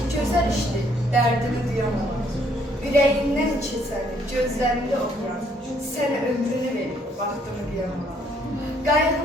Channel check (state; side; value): normal; both; correlation 0.66